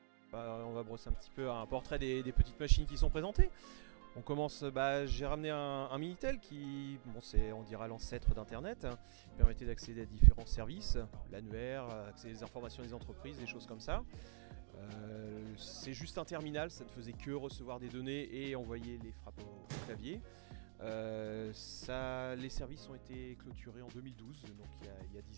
On va brosser un petit peu un portrait des petites machines qui sont présentées. On commence, j'ai ramené un Minitel qui, bon, c'est on dira l'ancêtre d'Internet, qui permettait d'accéder à différents services, l'annuaire, accéder aux informations des entreprises, des choses comme ça. C'est juste un terminal, ça ne faisait que recevoir des données et envoyer les frappes au clavier. Les services ont été clôturés en 2012, donc il y a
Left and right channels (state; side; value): silent; left; digital silence